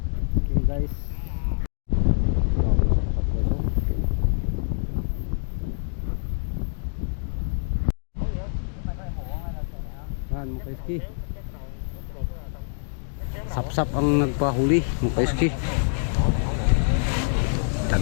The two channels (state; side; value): silent; right; digital silence